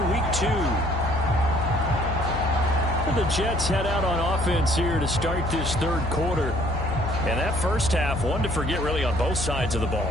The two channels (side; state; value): left; noise; hum, 5 dB below the sound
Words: week 2. And the Jets head out on offense here to start this third quarter. And that first half, one to forget really on both sides of the